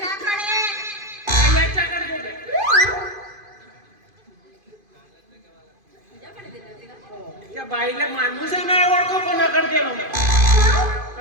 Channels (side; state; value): left; late; 2.5 ms